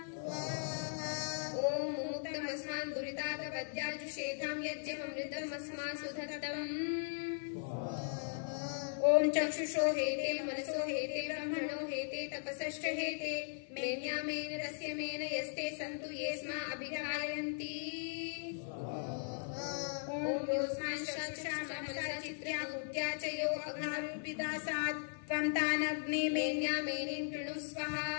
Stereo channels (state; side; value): silent; right; 52 dB below the other